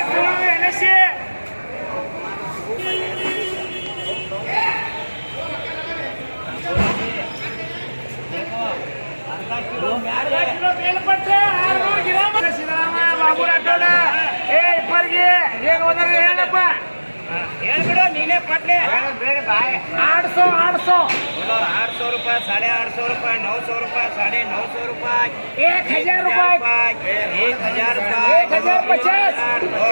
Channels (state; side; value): inverted; both; correlation -1.00